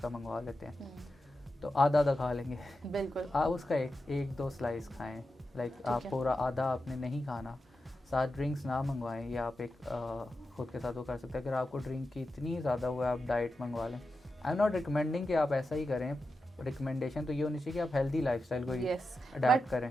मंगवा लेते हैं, तो आधा आधा खा लेंगे। बिल्कुल। आप उसका एक दो स्लाइस खाएं, लाइक आप है। पूरा आधा आपने नहीं खाना। साथ ड्रिंक्स ना मंगवाएं, या आप एक खुद के साथ वो कर सकते हैं। अगर आपको ड्रिंक की इतनी ज़्यादा हुआ है, आप डाइट मंगवा लें। आई एम नॉट रिकमेंडिंग कि आप ऐसा ही करें, रिकमेंडेशन तो ये होनी चाहिए कि आप हेल्दी लाइफस्टाइल को ही यस, अडेप्ट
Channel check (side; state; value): both; normal; correlation 0.90